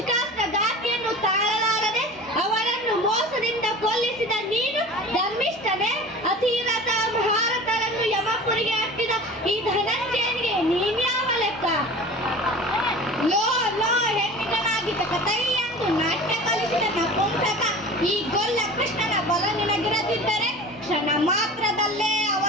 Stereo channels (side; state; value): both; normal; correlation 0.38